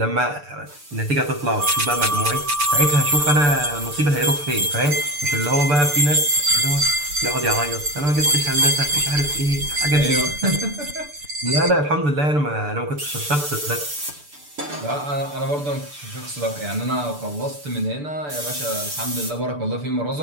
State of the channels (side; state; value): left; late; 6.8 ms